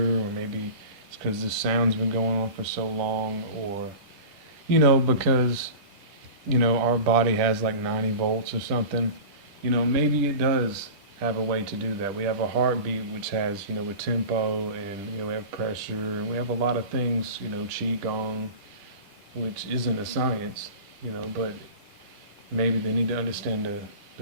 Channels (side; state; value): left; late; 10 ms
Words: or maybe it's because this sound's been going on for so long, or, because, our body has like 90 volts or something, maybe it does have a way to do that. We have a heartbeat which has, a tempo, and, we have pressure, and we have a lot of things, qigong, which isn't a science, but maybe they need to understand